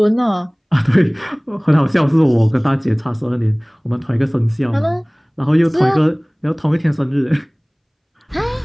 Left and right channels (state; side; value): identical; both; correlation 1.00